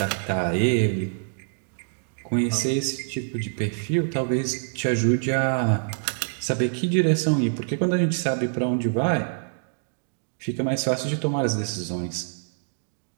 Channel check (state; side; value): silent; left; digital silence